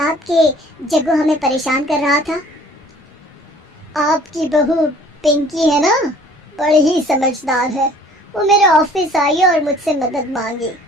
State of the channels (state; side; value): normal; both; correlation 0.53